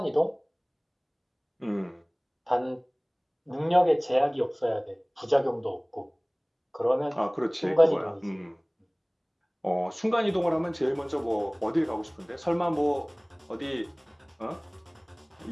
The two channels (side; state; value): both; identical; correlation 1.00